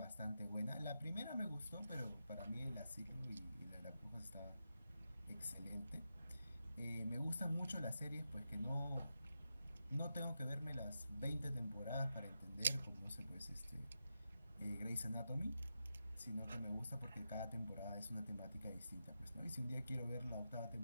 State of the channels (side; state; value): both; inverted; correlation -0.88